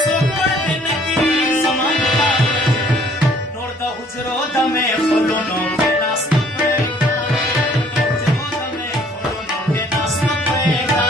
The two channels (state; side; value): normal; both; correlation 0.58